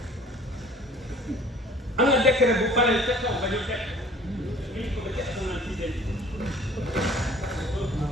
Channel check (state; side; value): normal; both; correlation 0.49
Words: am na décret bu paree ca kaw ba ñu teg